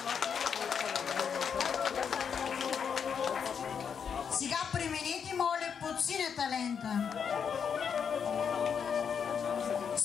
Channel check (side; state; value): right; quieter; 7.1 dB